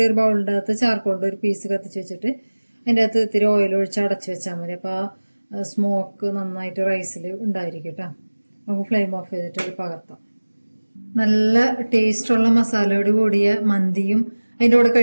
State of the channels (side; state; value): both; inverted; correlation -1.00